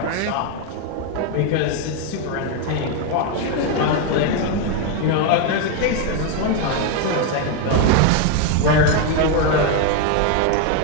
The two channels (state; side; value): different; both; correlation 0.01